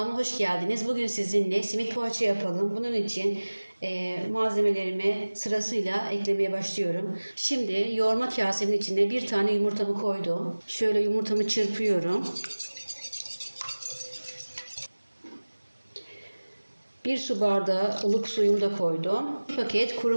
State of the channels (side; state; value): both; inverted; correlation -1.00